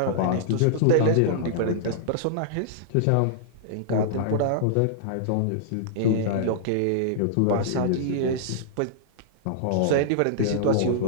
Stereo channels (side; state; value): both; different; correlation -0.02